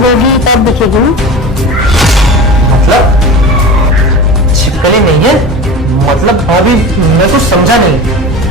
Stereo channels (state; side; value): normal; both; correlation 0.32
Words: तब दिखेगी। मतलब छिपकली नहीं है, मतलब भाभी मैं कुछ समझा नहीं।